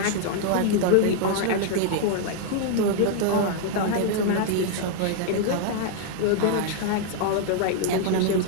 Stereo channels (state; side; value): different; both; correlation 0.00